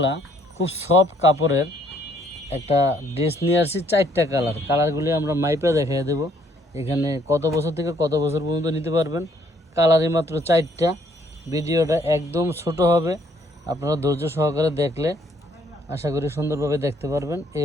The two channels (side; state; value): both; normal; correlation 0.66